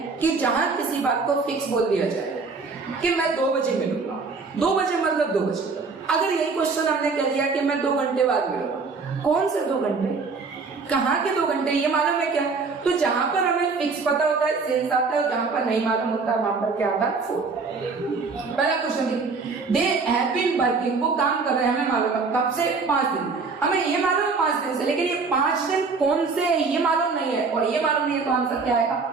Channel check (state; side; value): quieter; left; 4.5 dB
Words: कि जहां किसी बात को फिक्स बोल दिया जाए कि मैं 2 बजे मिलूंगा, 2 बजे मतलब 2 बजे। अगर यही क्वेश्चन हमने कह दिया कि मैं 2 घंटे बाद मिलूंगा, कौन से 2 घंटे, कहाँ के 2 घंटे, ये मालूम है क्या। तो जहां पर हमें फिक्स पता होता है सेंस आता है, जहां पर नहीं मालूम होता वहां पर क्या आता है, फोर। पहला क्वेश्चन देखिए, दे हैव बीन वर्किंग, वो काम कर रहे हैं, हमें मालूम है कब से, 5 दिन। हमें ये मालूम है 5 दिन से, लेकिन ये 5 दिन कौन से है ये मालूम नहीं है, और ये मालूम नहीं है, तो आंसर क्या आएगा,